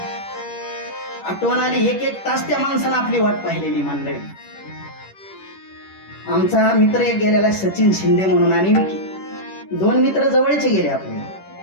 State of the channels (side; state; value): right; late; 10 ms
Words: आठवण आली, एक एक तास त्या माणसानं आपली वाट पाहिलेली मंडळी. आमचा मित्र एक गेलेला सचिन शिंदे म्हणून आणि विकी, दोन मित्र जवळचे गेले आपले.